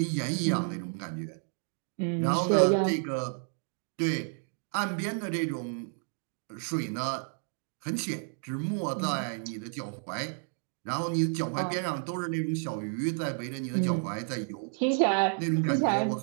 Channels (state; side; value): silent; left; 57 dB below the other